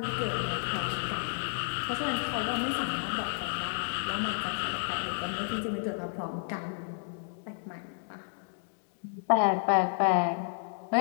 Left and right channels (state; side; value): silent; right; digital silence